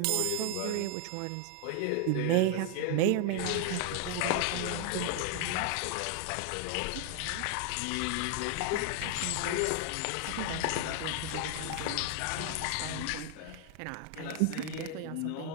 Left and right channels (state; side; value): different; both; correlation 0.00